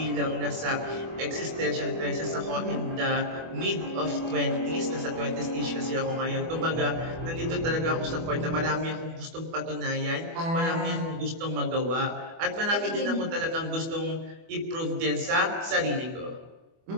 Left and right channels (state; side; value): late; left; 24 ms